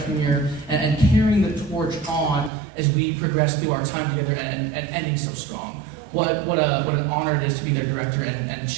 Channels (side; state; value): left; drops out; at 2.5 s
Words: year and carrying the torch on as we progress through our time together and ending so strong. What an honor it is to be their director and